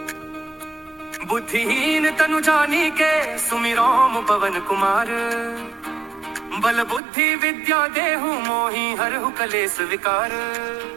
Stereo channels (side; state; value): left; drops out; at 7.0 s